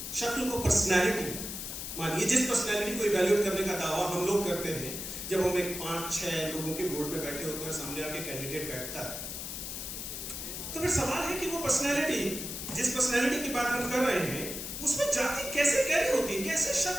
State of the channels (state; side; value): noise; left; hiss, 6 dB below the sound